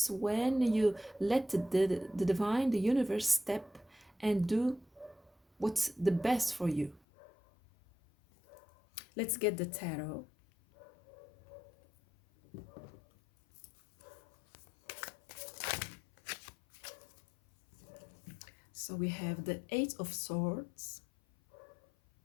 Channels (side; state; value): right; drops out; at 7.0 s